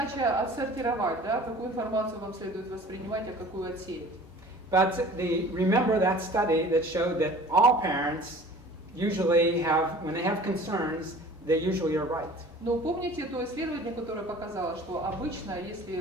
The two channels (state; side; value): normal; both; correlation 0.45